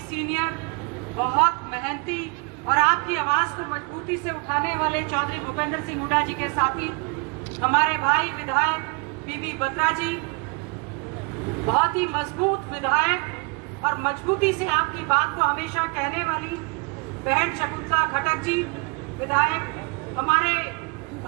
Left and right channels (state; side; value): quieter; left; 33.6 dB